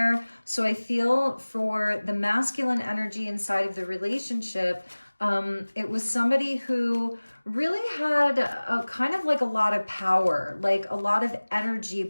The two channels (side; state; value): both; inverted; correlation -1.00